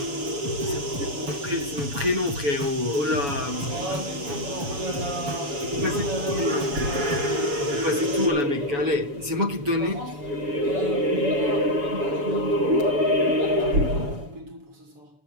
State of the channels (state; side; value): late; left; 7.1 ms